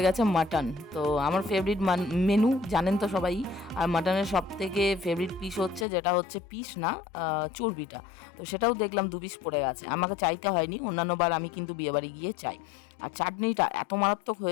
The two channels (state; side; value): drops out; right; at 5.9 s